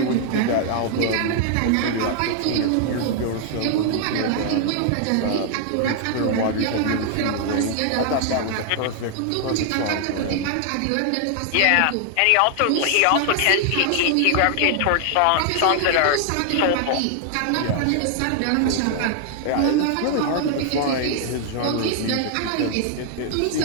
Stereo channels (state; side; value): different; both; correlation 0.00